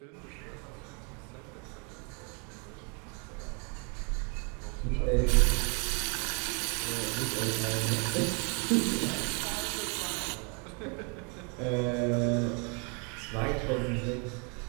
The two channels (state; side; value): quieter; left; 35.3 dB